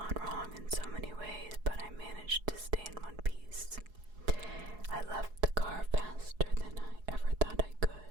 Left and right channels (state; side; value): late; left; 4.7 ms